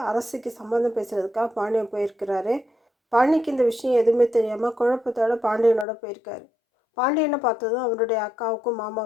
அரசிக்கு சம்மந்தம் பேசுகிறதுக்காக பாண்டியன் போயிருக்கிறாரு. பாண்டிக்கு இந்த விஷயம் எதுவுமே தெரியாமல் குழப்பத்தோட பாண்டியனோட போயிருக்காரு. பாண்டியனை பார்த்ததும் அவருடைய அக்காவுக்கும்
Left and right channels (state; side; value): drops out; right; at 5.9 s